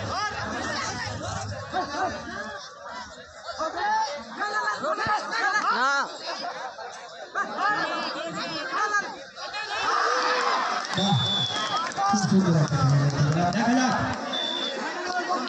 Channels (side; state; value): both; identical; correlation 1.00